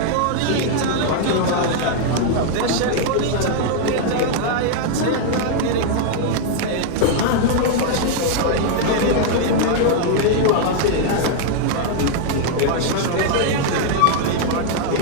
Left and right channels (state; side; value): different; both; correlation 0.00